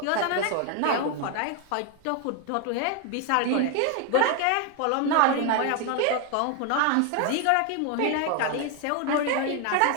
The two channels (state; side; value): different; both; correlation 0.01